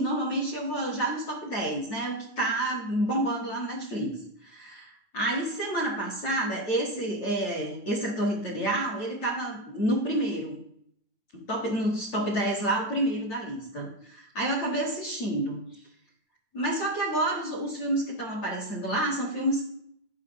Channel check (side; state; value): right; late; 9.0 ms